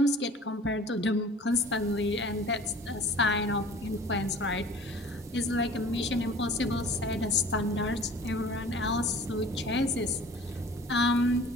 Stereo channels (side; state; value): both; normal; correlation 0.46